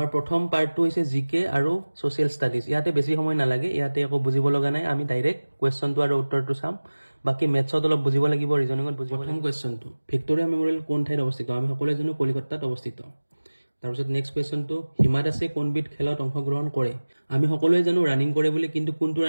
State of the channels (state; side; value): inverted; both; correlation -1.00